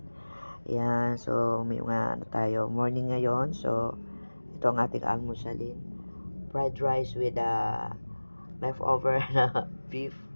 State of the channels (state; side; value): inverted; both; correlation -1.00